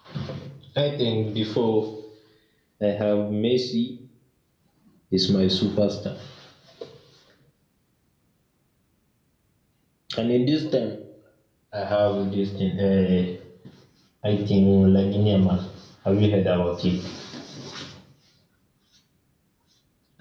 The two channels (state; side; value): identical; both; correlation 1.00